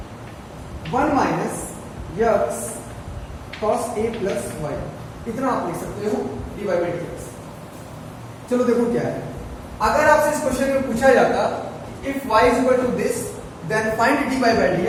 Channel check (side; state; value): both; identical; correlation 1.00